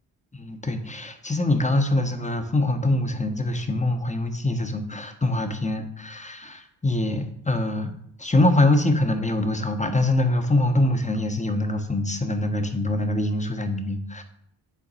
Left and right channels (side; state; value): both; normal; correlation 0.68